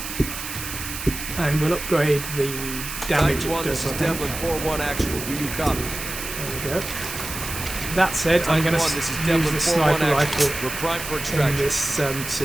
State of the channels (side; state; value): right; noise; hiss, 8 dB below the sound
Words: And we'll upgrade the damage it does, I think. Devlin 4-1 actual. Do you copy? There we go. That said, I'm going to use the sniper rifle We're primed for in extraction. this